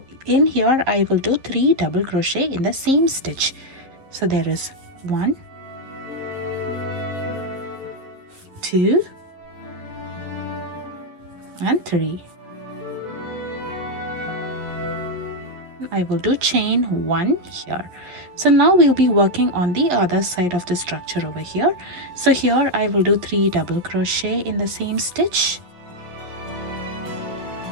in here I will do 3 double crochet in the same stitch. So there is 1, 2 and 3. I will do chain 1 here. So now we'll be working on the other side of the structure over here. So here I will do 3 double crochet in the same stitch,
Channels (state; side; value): late; left; 11 ms